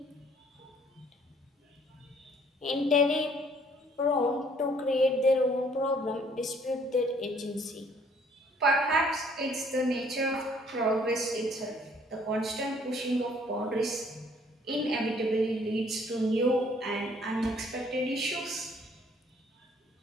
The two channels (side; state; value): both; normal; correlation 0.61